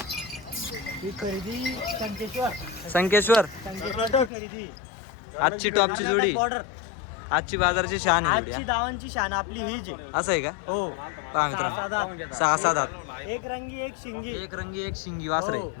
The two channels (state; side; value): drops out; right; at 4.3 s